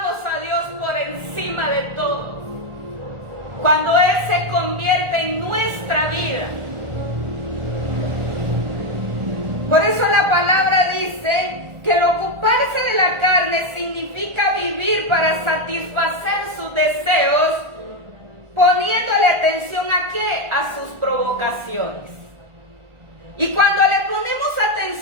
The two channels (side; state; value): left; late; 1.4 ms